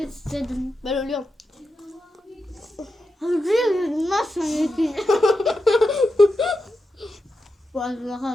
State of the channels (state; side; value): normal; both; correlation 0.88